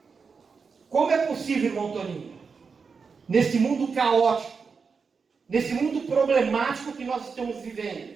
Como é possível, irmão Toninho? Nesse mundo caótico, nesse mundo problemático que nós estamos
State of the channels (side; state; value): left; quieter; 5.3 dB